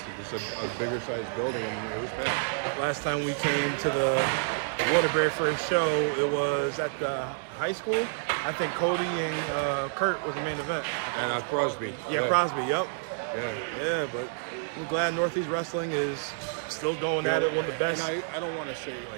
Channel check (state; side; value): silent; left; digital silence